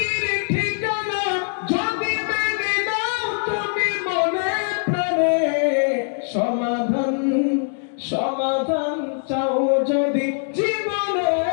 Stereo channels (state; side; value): silent; right; 64 dB below the other